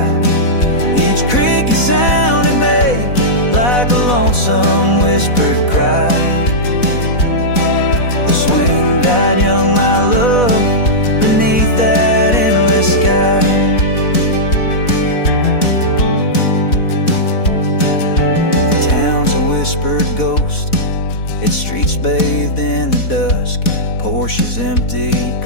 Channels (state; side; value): late; right; 4.1 ms